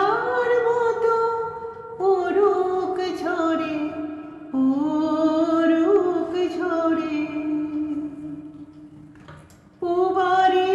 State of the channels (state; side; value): identical; both; correlation 1.00